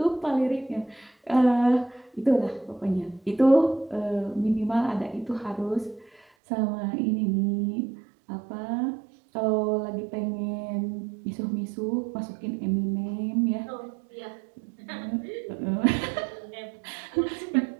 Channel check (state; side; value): drops out; left; at 6.2 s